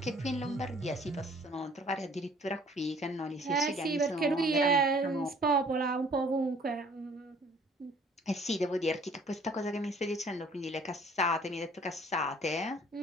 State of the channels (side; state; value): both; normal; correlation 0.56